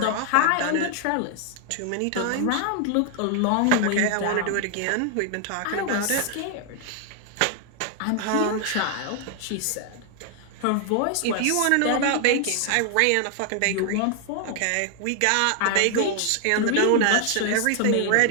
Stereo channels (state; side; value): different; both; correlation 0.00